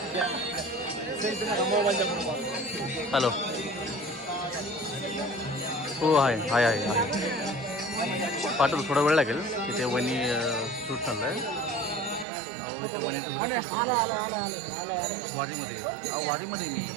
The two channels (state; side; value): drops out; left; at 12.2 s